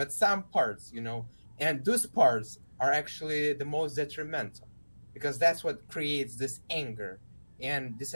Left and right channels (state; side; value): inverted; both; correlation -1.00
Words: some parts, and those parts are actually the most detrimental, because that's what creates this anger and